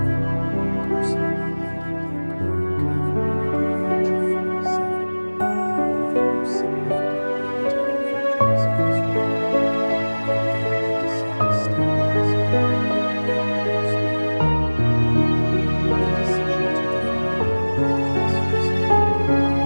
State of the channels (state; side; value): inverted; both; correlation -1.00